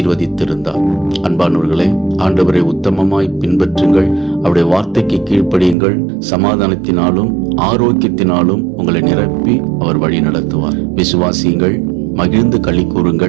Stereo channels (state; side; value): drops out; left; at 5.8 s